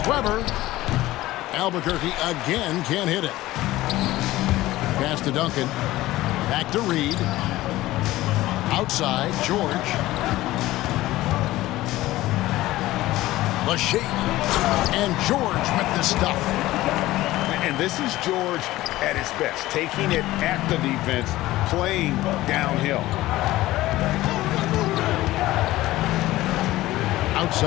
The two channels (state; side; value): quieter; right; 16.8 dB